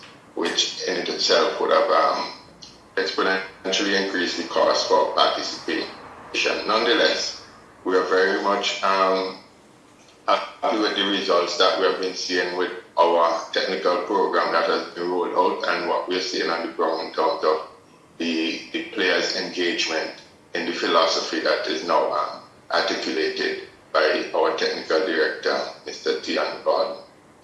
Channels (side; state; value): both; identical; correlation 1.00